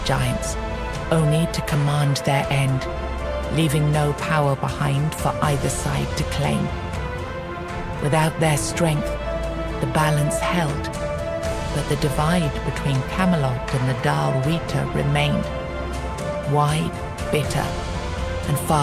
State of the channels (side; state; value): both; identical; correlation 1.00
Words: giants, only to command their end, leaving no power behind for either side to claim. Without their strength, the balance held, but the divide between Camelot and the Dal Rita remained, wide, bitter, and